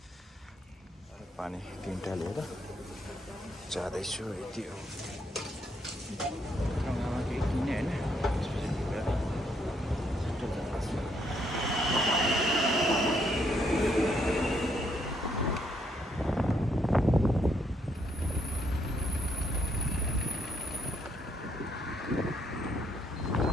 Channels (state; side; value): normal; both; correlation 0.73